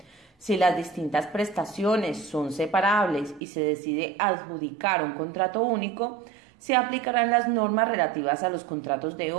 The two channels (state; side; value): drops out; left; at 3.4 s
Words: si las distintas prestaciones son separables y se decide adjudicar un contrato único, se aplicarán las normas relativas a los contratos de